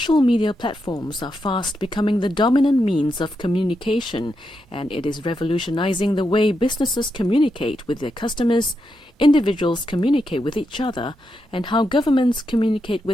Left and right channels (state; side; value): normal; both; correlation 0.84